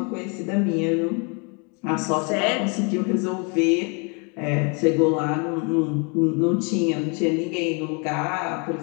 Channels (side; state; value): right; quieter; 34.2 dB